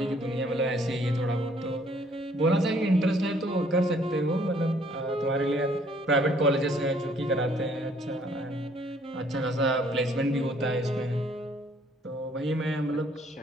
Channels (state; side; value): normal; both; correlation 0.62